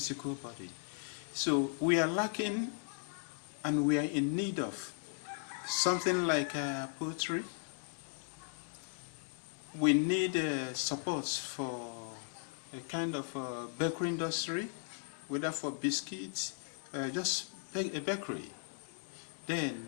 body. So we are lacking, and we are in need of something like poultry. We need support for a kind of bakery industry, whether for biscuits, just a bakery. Then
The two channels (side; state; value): right; silent; digital silence